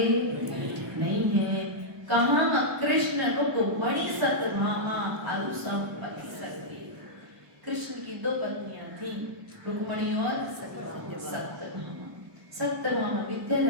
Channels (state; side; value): late; left; 1.0 ms